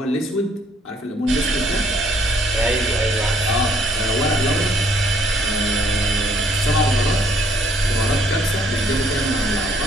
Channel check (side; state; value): both; normal; correlation 0.65